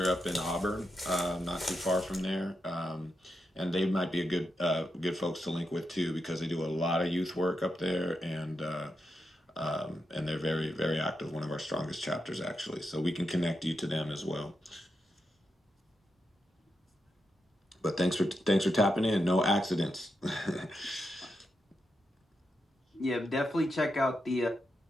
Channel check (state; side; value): normal; both; correlation 0.86